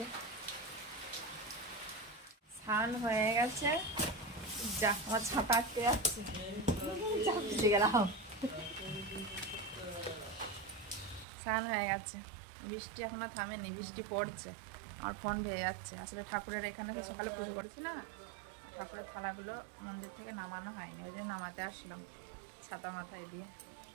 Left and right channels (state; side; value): drops out; left; at 11.2 s